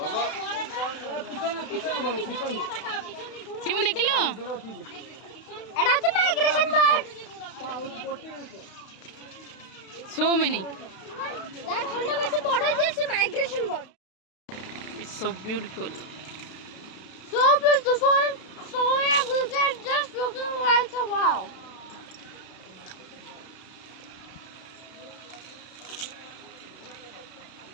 सिमु देखिलु एडा छ migration bird so many that हल्ला वैसे बड़ा जैसे migration bird it's so beautiful so everything just looking like a wow.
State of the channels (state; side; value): late; right; 32 ms